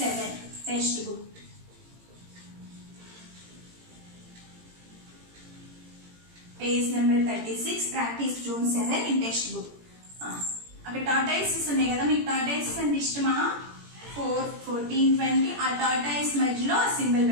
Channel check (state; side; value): late; left; 17 ms